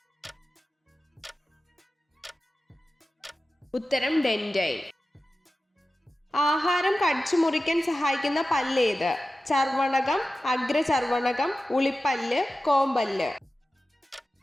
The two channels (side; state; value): both; normal; correlation 0.94